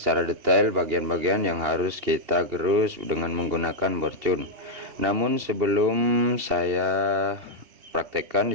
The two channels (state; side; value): late; left; 2.8 ms